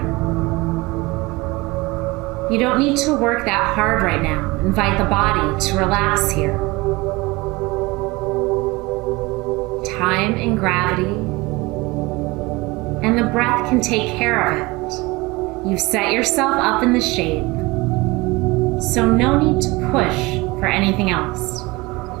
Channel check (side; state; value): left; quieter; 22.9 dB